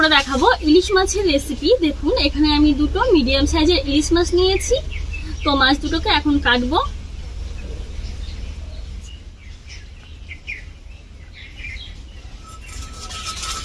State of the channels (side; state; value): both; identical; correlation 1.00